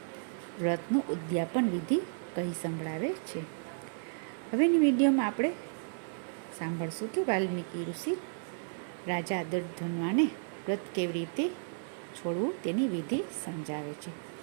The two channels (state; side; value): silent; left; digital silence